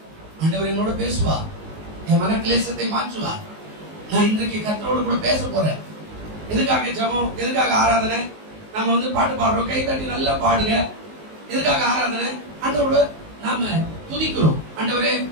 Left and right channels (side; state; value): left; late; 19 ms